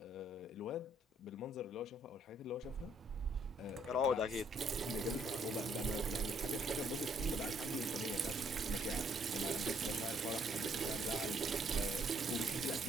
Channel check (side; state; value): both; normal; correlation 0.68